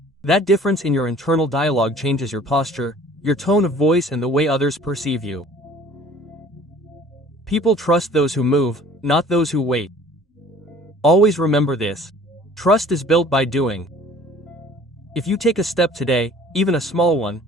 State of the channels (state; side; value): normal; both; correlation 0.50